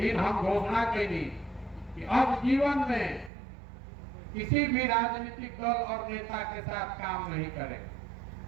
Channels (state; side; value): drops out; left; at 3.3 s